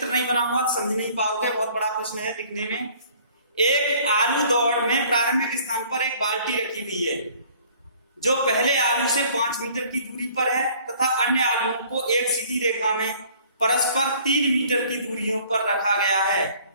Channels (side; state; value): both; inverted; correlation -0.55